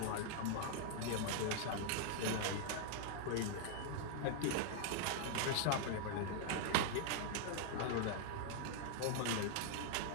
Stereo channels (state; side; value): different; both; correlation 0.00